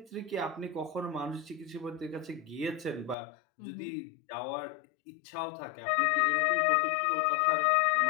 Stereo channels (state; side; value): drops out; right; at 3.2 s